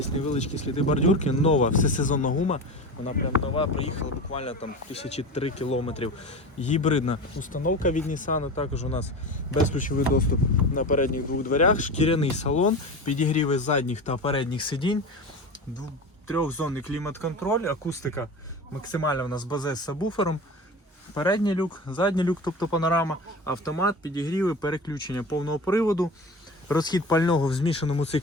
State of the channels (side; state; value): both; normal; correlation 0.29